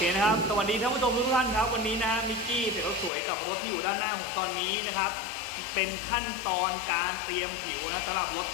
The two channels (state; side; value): drops out; right; at 3.1 s